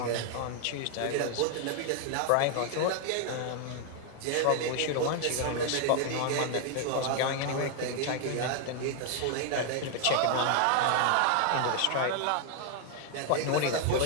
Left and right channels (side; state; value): both; different; correlation 0.00